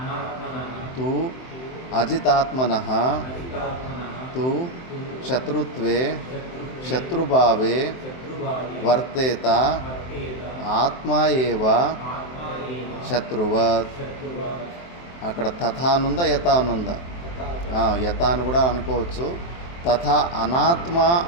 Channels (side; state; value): right; late; 23 ms